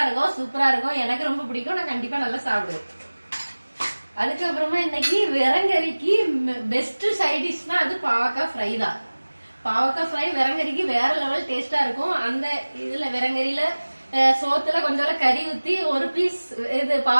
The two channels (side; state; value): both; inverted; correlation -1.00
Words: இருக்கும், சூப்பரா இருக்கும். எனக்கு ரொம்ப பிடிக்கும், நான் கண்டிப்பா நல்லா சாப்பிடுவேன். அதுக்கப்புறமா இன்னைக்கு விரங்கறிக்கு பெஸ்ட் சைட் டிஷ்னா அது பாவக்காய் ஃப்ரை தான். பாவக்காய் ஃப்ரை விரங்கறிக்கு வேற லெவல் டேஸ்டா இருக்கும். அந்த இதுல விரங்கறியில சோத்துல கொஞ்சம் கறி ஊத்தி ஒரு பீஸ் இது